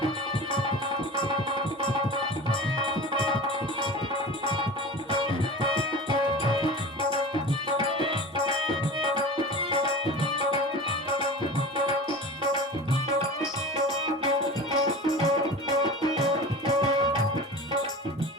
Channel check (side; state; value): both; normal; correlation 0.34